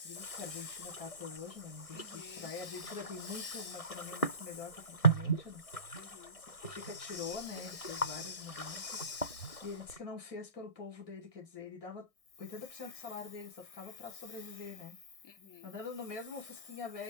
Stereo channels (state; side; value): late; right; 1.6 ms